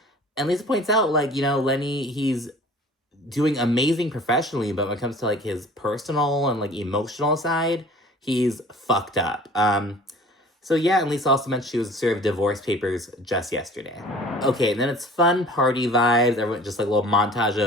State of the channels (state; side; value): normal; both; correlation 0.46